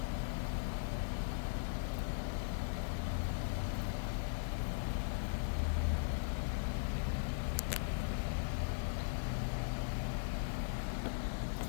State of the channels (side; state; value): right; silent; digital silence